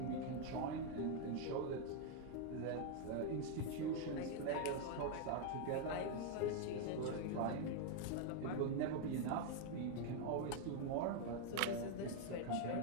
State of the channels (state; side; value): different; both; correlation 0.00